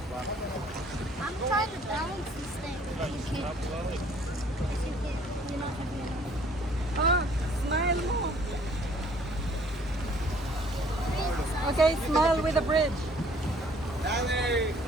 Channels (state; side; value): normal; both; correlation 0.58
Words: I'm trying to balance this thing. Ah, smile mo. Okay, smile with a bridge.